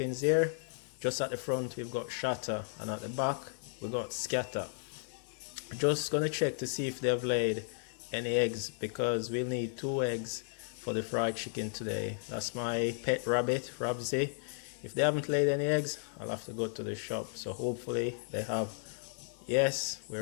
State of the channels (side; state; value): right; silent; digital silence